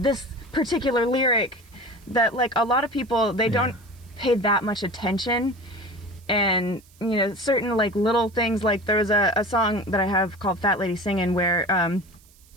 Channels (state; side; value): noise; right; hiss, 28 dB below the sound